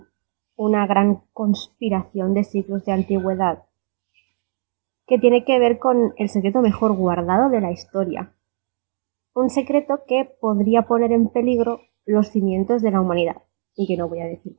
una gran conspiración de siglos de antigüedad que tiene que ver con el secreto mejor guardado de la historia. Un secreto que podría poner en peligro los cimientos de la humanidad. Y que no voy a decir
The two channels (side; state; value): left; silent; digital silence